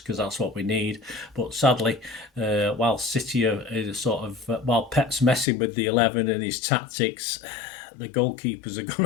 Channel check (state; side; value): drops out; right; at 5.5 s